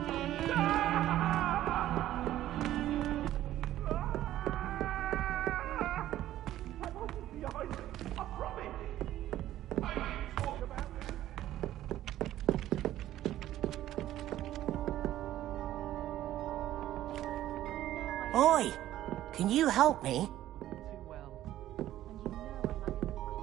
Oi! Can you help me?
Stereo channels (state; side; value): quieter; left; 13.4 dB